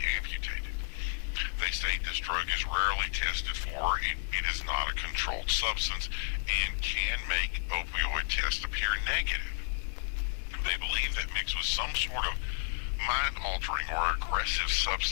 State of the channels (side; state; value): right; silent; digital silence